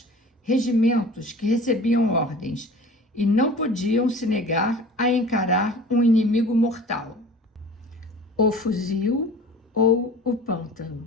regimentos que recebiam ordens e não podiam se negar a encarar um inimigo mortal. O fuzil ou o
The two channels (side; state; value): both; normal; correlation 0.42